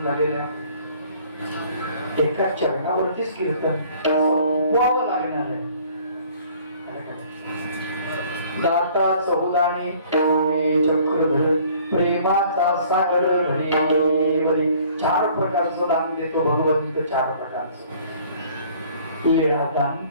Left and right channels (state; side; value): inverted; both; correlation -0.55